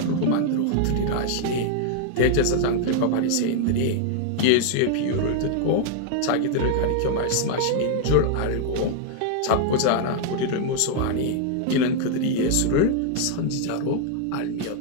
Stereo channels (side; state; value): both; different; correlation 0.00